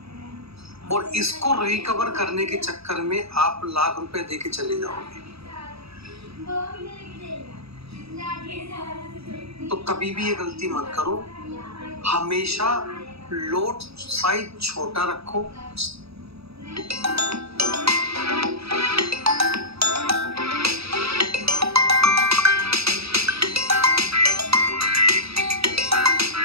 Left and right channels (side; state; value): left; late; 0.78 ms